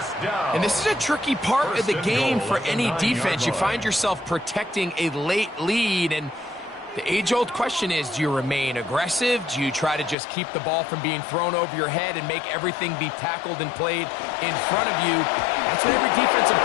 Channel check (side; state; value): right; drops out; at 10.2 s